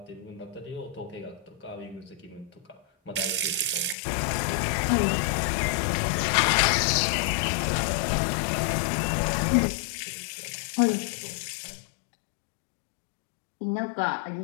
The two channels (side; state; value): right; drops out; at 4.0 s